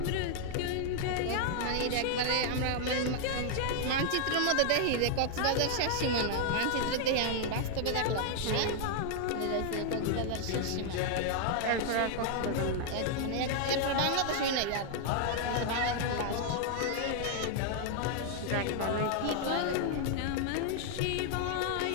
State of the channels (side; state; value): both; different; correlation 0.00